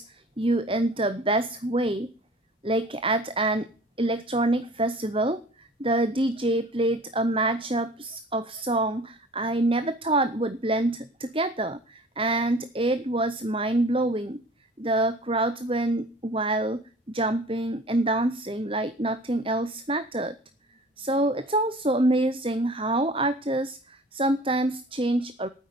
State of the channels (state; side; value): normal; both; correlation 0.45